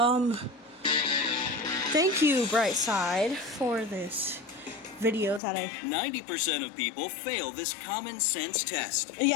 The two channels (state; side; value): drops out; right; at 5.4 s